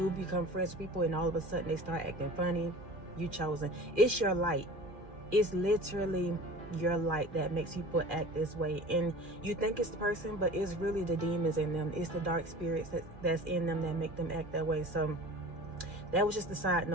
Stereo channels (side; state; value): left; late; 2.4 ms